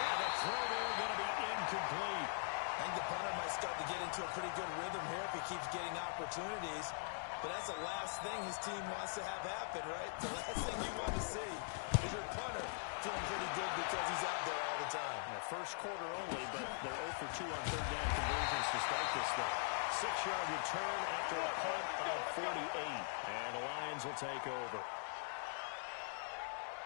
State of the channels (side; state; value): right; silent; digital silence